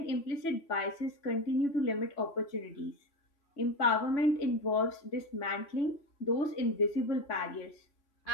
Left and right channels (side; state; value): right; late; 3.0 ms